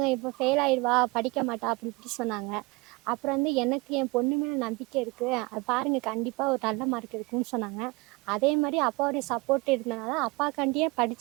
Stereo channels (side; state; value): left; quieter; 24.8 dB